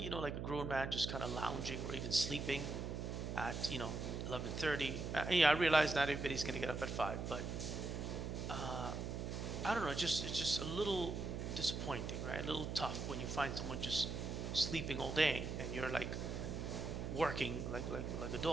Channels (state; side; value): noise; right; hum, 4 dB below the sound